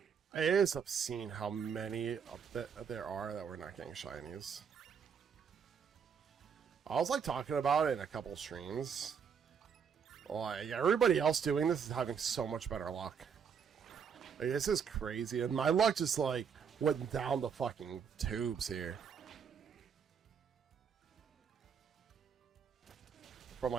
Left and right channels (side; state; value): left; quieter; 6.9 dB